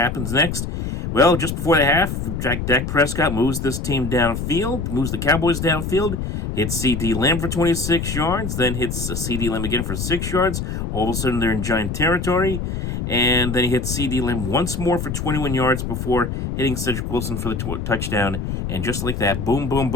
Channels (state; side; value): noise; left; rumble, 4 dB below the sound